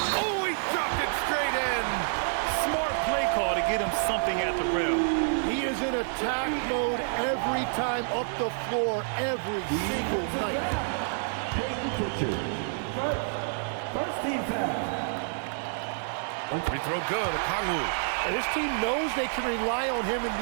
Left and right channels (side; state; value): left; silent; digital silence